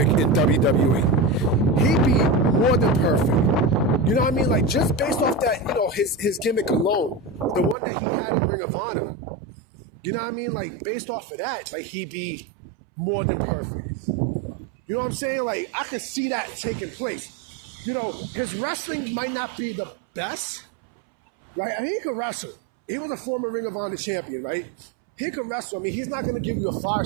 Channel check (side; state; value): left; drops out; at 7.8 s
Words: in WWE. He'd be more than perfect. You know what I mean? Like, just based off that, his gimmick alone, the one that he had in Ring of Honor. You know what I mean? Like, based off of that, like, he'd be more than perfect. You know what I'm saying? Like, I could see that taking place. His wrestling might not be the best, right? I mean, he could wrestle. He was a former Ring of Honor champion, right? He can wrestle. I mean, he's not going to give you